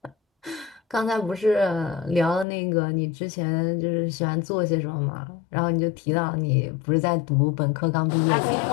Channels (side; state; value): right; drops out; at 2.5 s